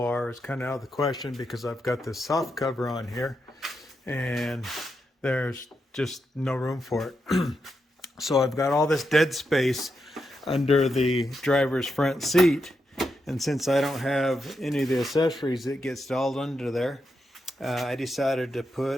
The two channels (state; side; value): normal; both; correlation 0.85